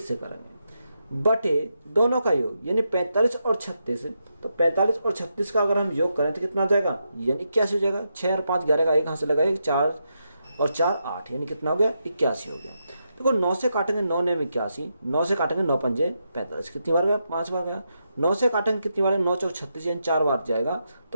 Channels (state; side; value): inverted; both; correlation -0.84